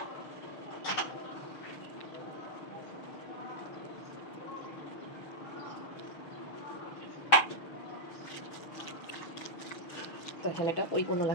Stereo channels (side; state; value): right; late; 6.5 ms